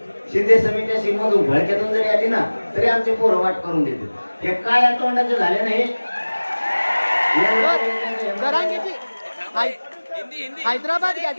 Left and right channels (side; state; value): both; inverted; correlation -1.00